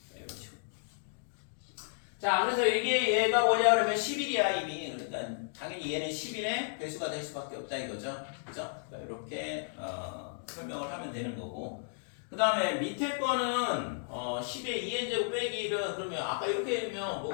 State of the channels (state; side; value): silent; right; digital silence